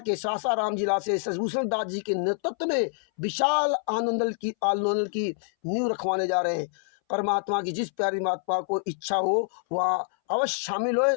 सासाराम जिला से शशिभूषण दास जी के नेतृत्व में विशाल आंदोलन की नींव रखवाने जा रहे हैं। परमात्मा की जिस प्यारी महात्मा को इच्छा हो वह अवश्य शामिल हो,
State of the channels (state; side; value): silent; right; 60 dB below the other